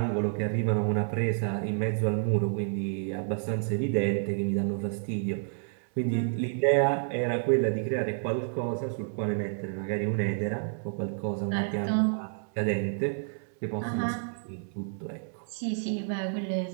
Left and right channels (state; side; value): silent; left; digital silence